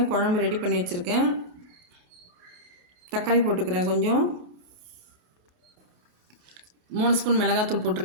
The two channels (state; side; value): late; left; 27 ms